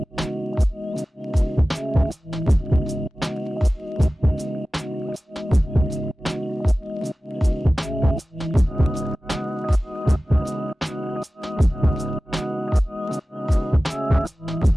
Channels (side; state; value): both; normal; correlation 0.96